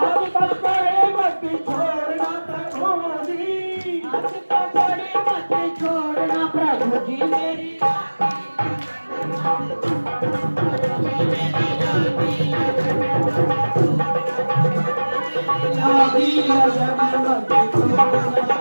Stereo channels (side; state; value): both; inverted; correlation -1.00